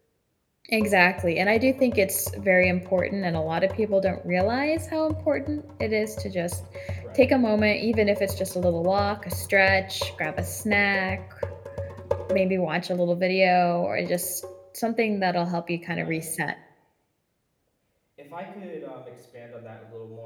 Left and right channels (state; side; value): identical; both; correlation 1.00